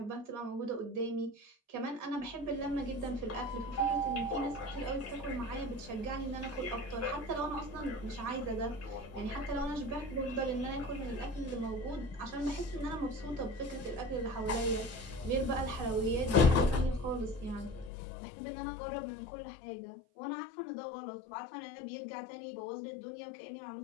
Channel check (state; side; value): drops out; right; at 17.9 s